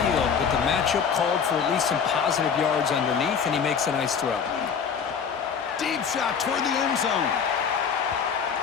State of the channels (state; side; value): quieter; right; 6.7 dB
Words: but the matchup called for at least some positive yards underneath, and he makes a nice throw. Deep shot toward the end zone.